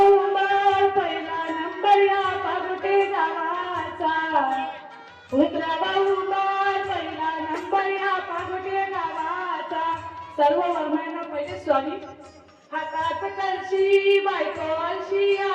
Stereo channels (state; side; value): identical; both; correlation 1.00